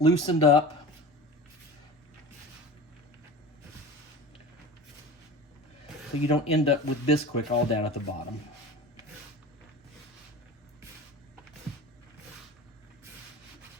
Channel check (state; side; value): normal; both; correlation 0.34